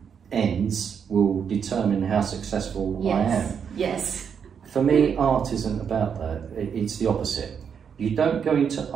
ends will determine how successful I am. Yes. For me, art isn't about that. It's the opposite. You don't go into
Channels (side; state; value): left; quieter; 7.2 dB